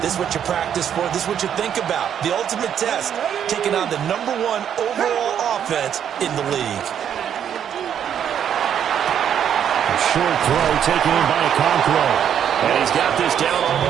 This is what you practice for. This is what you think about. The ultimate test, taking on the #1 overall offense in the league. Short throw taken in by Okonkwo. And he's got this down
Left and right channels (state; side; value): quieter; left; 9.1 dB